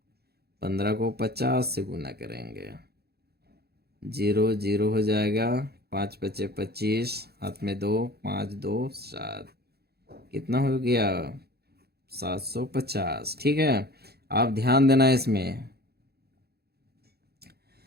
15 को 50 से गुना करेंगे। 0 0 हो जाएगा, 5 बचे 25, हाथ में 2, 5 2 7, कितना हो गया, 750। ठीक है, आप ध्यान देना, इसमें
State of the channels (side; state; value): left; late; 0.46 ms